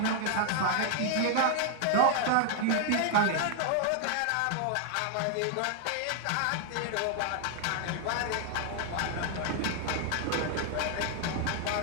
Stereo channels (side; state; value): both; different; correlation 0.00